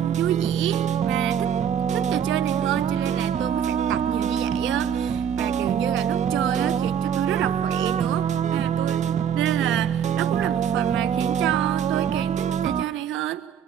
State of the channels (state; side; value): quieter; left; 8.6 dB